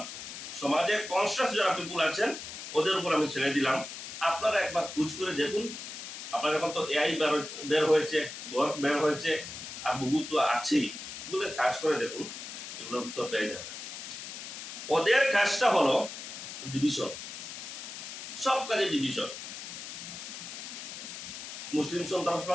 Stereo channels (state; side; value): noise; left; hiss, 9 dB below the sound